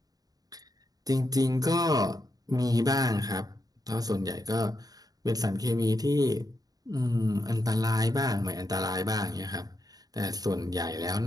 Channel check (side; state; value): left; late; 0.18 ms